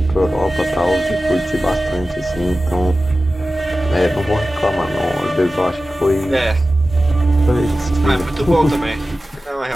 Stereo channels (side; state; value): both; normal; correlation 0.95